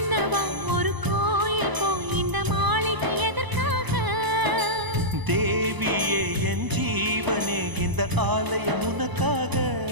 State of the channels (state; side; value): late; left; 1.0 ms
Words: ஒரு கோயில் போய் இந்த மாளிகை எதற்காக? தேவியே என் ஜீவனே இந்த ஆலயம் உனக்காக.